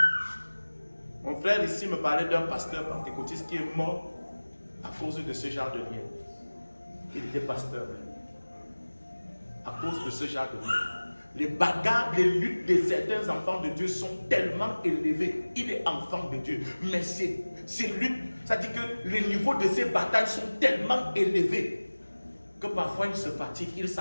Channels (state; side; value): inverted; both; correlation -1.00